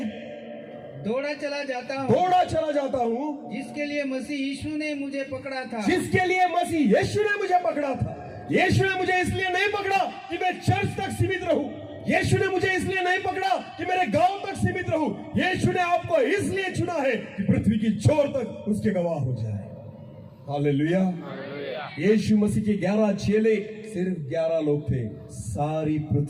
दौड़ा चला जाता हूँ जिसके लिए मसीह यीशु ने मुझे पकड़ा था। यीशु ने मुझे इसलिए नहीं पकड़ा कि मैं चर्च तक सीमित रहूं। यीशु ने मुझे इसलिए नहीं पकड़ा कि मेरे गांव तक सीमित रहूं। यीशु ने आपको इसलिए चुना है कि पृथ्वी की छोर तक उसके गवाह हो जाए। हालेलुया। यीशु मसीह के 11 चेले सिर्फ 11 लोग थे, सारी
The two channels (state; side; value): identical; both; correlation 1.00